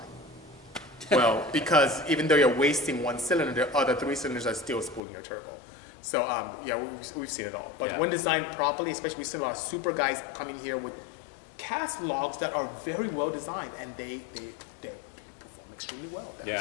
Well, because even though you're wasting one cylinder, the other 3 cylinders are still spooling your turbo. So yeah, we've seen it all. But when designed properly, especially we've seen a lot of super guys coming here with cast logs that are very well designed, and they perform extremely well.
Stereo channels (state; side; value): drops out; right; at 5.0 s